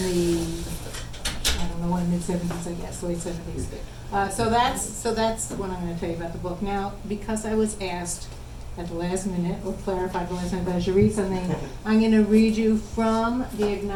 the, mid-70s, I guess, late 70s. So that's what I'm going to tell you about the book. Now, because I was asked at the last minute, or clarified the last minute that I should read something, I'm going to read you from the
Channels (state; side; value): identical; both; correlation 1.00